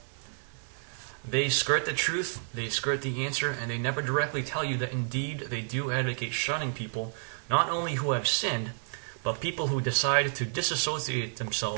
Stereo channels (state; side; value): silent; left; digital silence